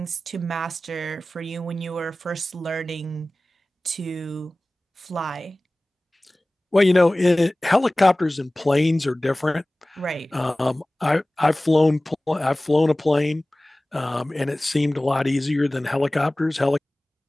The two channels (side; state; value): both; normal; correlation 0.98